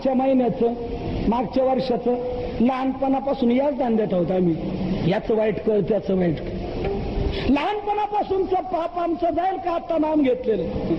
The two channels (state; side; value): identical; both; correlation 1.00